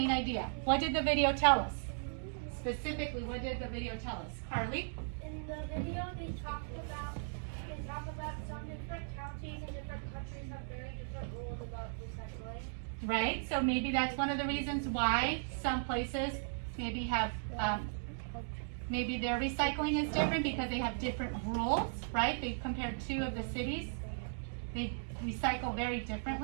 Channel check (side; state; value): left; silent; digital silence